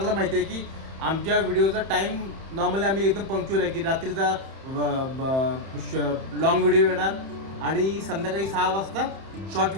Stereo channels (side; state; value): left; late; 31 ms